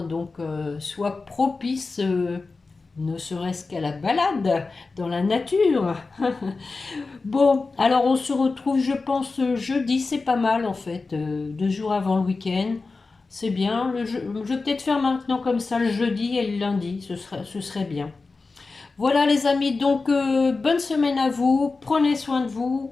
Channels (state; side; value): quieter; right; 3.9 dB